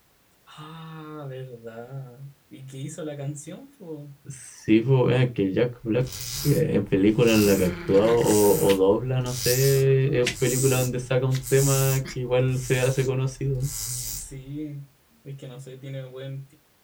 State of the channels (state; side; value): identical; both; correlation 1.00